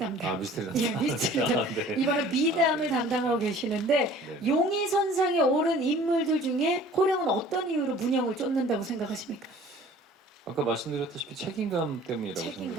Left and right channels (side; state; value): both; normal; correlation 0.49